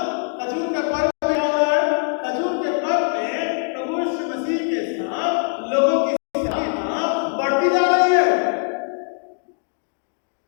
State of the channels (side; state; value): right; silent; 56 dB below the other